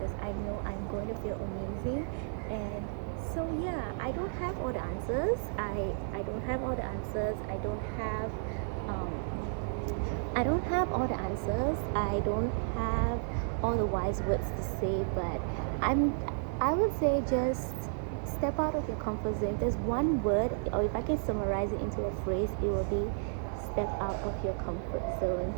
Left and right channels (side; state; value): left; silent; 56 dB below the other